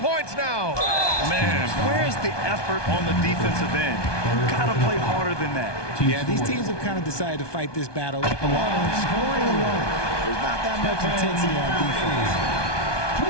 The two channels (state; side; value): late; right; 1.2 ms